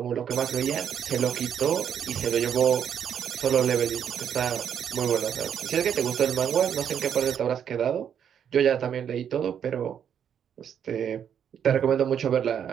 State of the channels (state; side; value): quieter; left; 8.6 dB